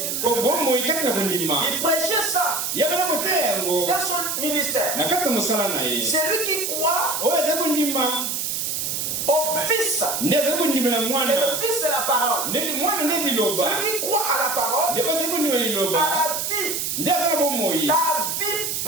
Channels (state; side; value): noise; right; hiss, 1 dB below the sound